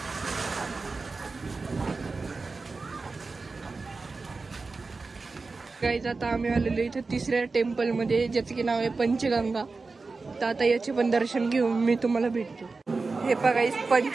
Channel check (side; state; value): left; quieter; 4.0 dB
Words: गाईज आता आम्ही आलेलो इथे तिसऱ्या टेम्पल मध्ये ज्याचं की नाव आहे पंचगंगा. तर आता याचे पण दर्शन घेऊन मी तुम्हाला भेटतो. हे बघा